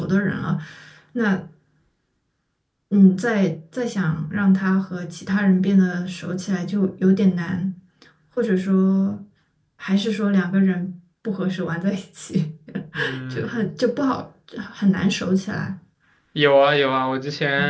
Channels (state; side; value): identical; both; correlation 1.00